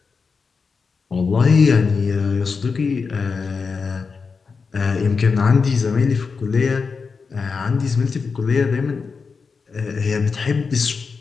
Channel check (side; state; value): right; quieter; 5.0 dB